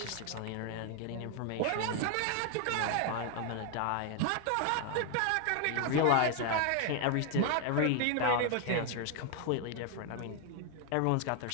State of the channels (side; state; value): both; different; correlation 0.00